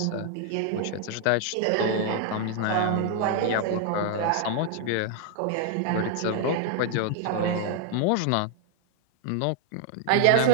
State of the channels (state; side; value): different; both; correlation 0.00